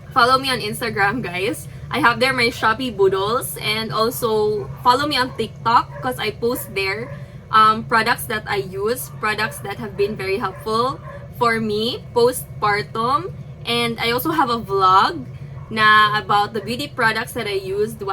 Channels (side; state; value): both; identical; correlation 1.00